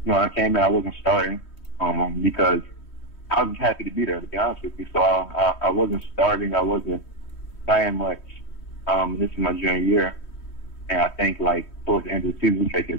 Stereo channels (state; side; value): late; right; 3.1 ms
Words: I came in, I wasn't starting because I was happy to be there, to be honest with you. So I wasn't starting, I wasn't playing much. This is my junior year, and I think like towards the end of the season we played